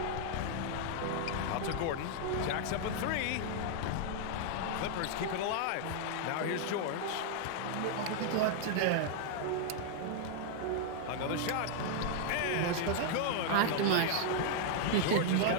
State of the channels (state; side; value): different; both; correlation -0.01